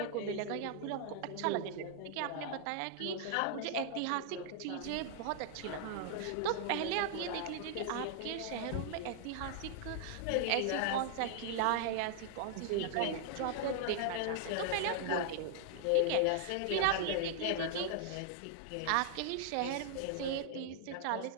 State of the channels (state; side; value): different; both; correlation -0.01